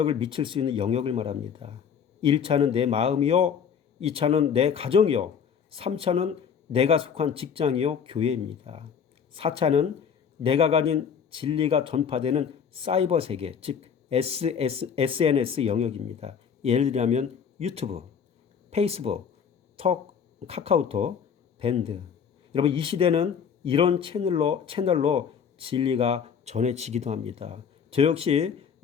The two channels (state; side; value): quieter; right; 7.2 dB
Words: 미칠 수 있는 영역을 말합니다. 1차는 내 마음이요. 2차는 내 가정이요. 3차는 내가 속한 직장이요. 교회입니다. 4차는 내가 가진 진리가 전파되는 사이버 세계, 즉 SNS 영역입니다. 예를 들면 유튜브, 페이스북, 톡, 카카오톡, 밴드. 여러분 이 시대는 이런 채널로 진리가 전해지기도 합니다. 저 역시